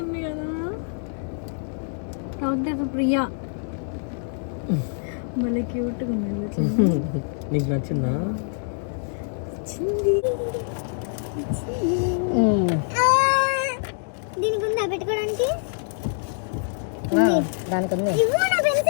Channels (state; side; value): silent; right; digital silence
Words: ప్రియా భలే క్యూట్గా ఉంది. నీకు నచ్చిందా? దీనికి ఉందా పెట్టుకోవడానికి? దానికి ఉంది.